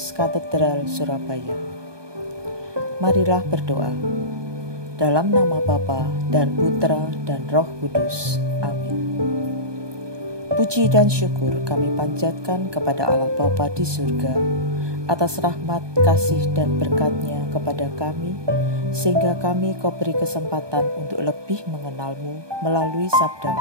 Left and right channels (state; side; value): late; left; 1.2 ms